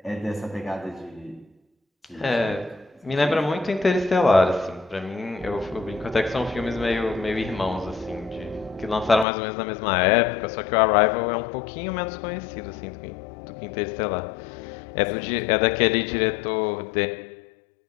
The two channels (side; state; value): right; drops out; at 9.2 s